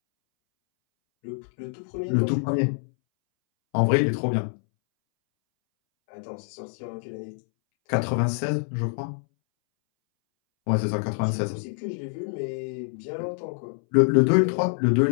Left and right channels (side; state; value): right; silent; 61 dB below the other